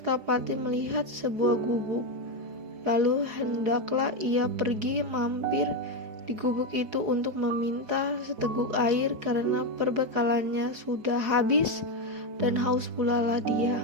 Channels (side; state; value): left; late; 5.1 ms